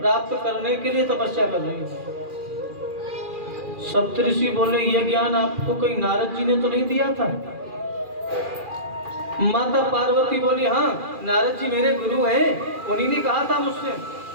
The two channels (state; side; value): late; left; 2.4 ms